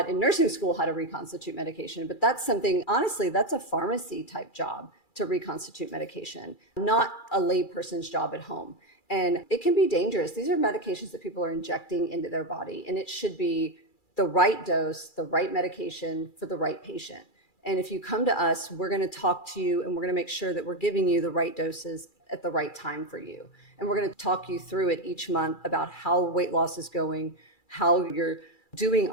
in nursing school how to reconstitute medication, but that's something, honestly, that's a pharmacy type job to reconstitute medication, not a layperson's job at home. And it can be dangerous. These are medications that people are injecting into their body, and it should be the right dose, the right medication for the right patient. And if you come to us, we're going to talk to you and we're going to make sure that we're giving you the right doses at the right time for you. And we're going to talk you through it each month about how weight loss is going, how you're doing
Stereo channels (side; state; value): right; late; 2.3 ms